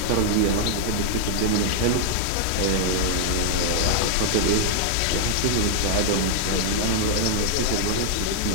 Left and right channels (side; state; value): both; different; correlation -0.01